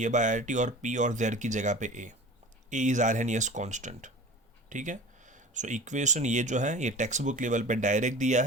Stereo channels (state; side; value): normal; both; correlation 0.39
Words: A by R T, और पी और जेड की जगह पे ए इज आर्हेनियस कांस्टेंट। ठीक है, सो इक्वेशन ये जो है ये टेक्स्ट बुक लेवल पे डायरेक्ट दिया